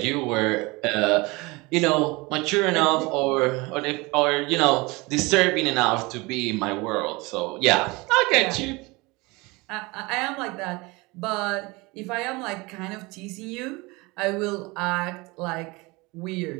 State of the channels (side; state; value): left; quieter; 24.4 dB